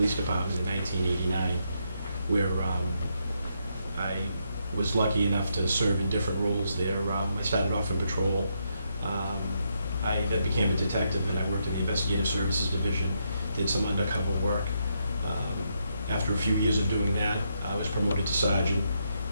Department in 1989, where I was lucky enough to serve in different roles there. I started off in patrol, I then became a detective, and I worked in the investigative services division, did some undercover work. After a few years of doing that, I was promoted to sergeant,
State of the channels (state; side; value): inverted; both; correlation -0.79